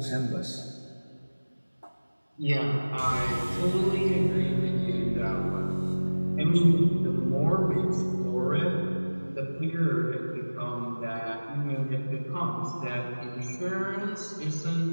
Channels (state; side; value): inverted; both; correlation -1.00